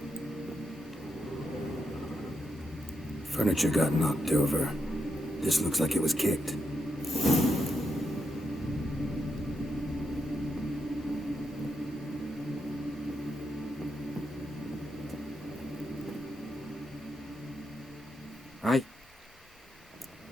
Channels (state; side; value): normal; both; correlation 0.83